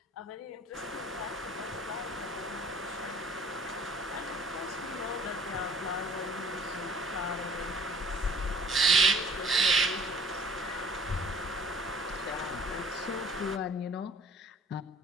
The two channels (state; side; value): normal; both; correlation 0.50